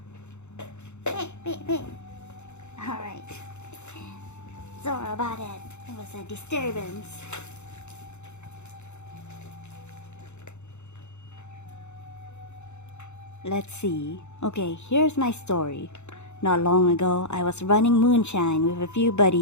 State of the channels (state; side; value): late; right; 0.83 ms